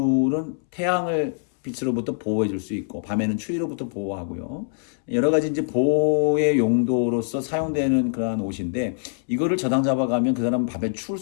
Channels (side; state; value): right; silent; 63 dB below the other